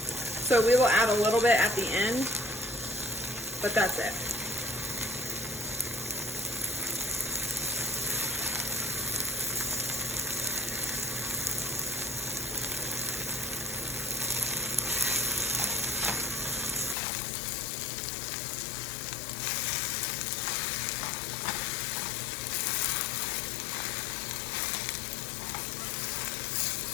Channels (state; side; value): drops out; right; at 16.9 s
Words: we will add a little bit at the end, but that's it.